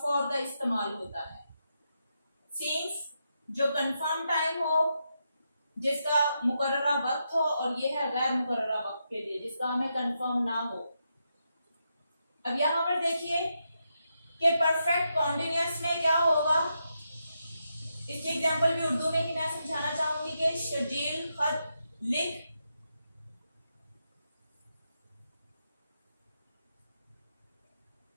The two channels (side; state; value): both; inverted; correlation -0.84